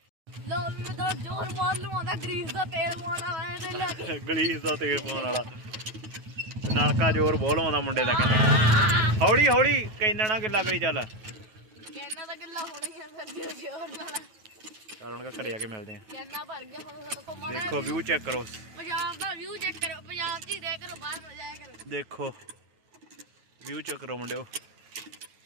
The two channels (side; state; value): left; late; 9.3 ms